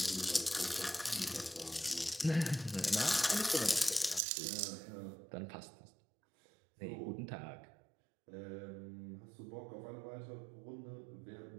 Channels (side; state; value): left; drops out; at 4.2 s